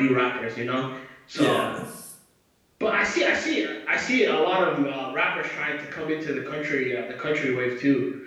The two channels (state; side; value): identical; both; correlation 1.00